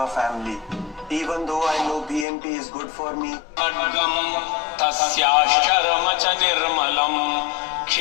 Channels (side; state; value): right; drops out; at 2.2 s